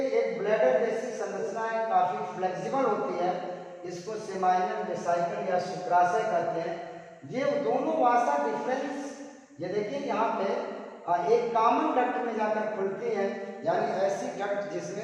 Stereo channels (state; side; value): identical; both; correlation 1.00